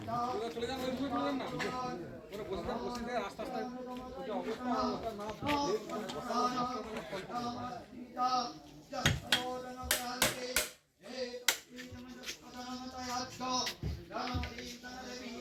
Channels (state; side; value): identical; both; correlation 1.00